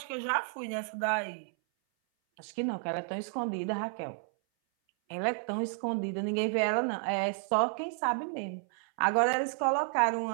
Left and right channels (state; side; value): silent; left; 57 dB below the other